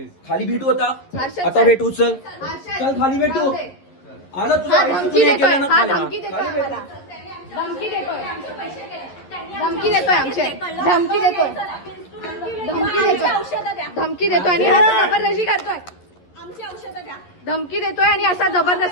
खाली भेटू आता. आता भेटू. चल चल खाली भेटू. आलं तुला धमकी देतोय. हा धमकी देतोय आम्हाला. धमकी देतोय आमचे. धमकी देतोय आणि हा जबरदस्ती करतोय. धमकी देतोय आणि असा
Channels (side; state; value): right; late; 11 ms